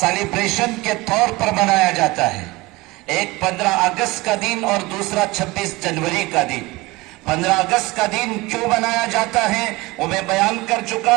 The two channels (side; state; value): left; quieter; 21.9 dB